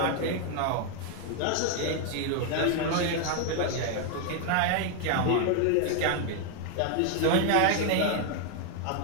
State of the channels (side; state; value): both; different; correlation 0.00